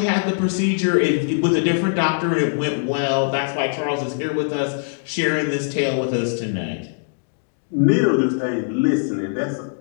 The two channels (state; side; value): silent; right; digital silence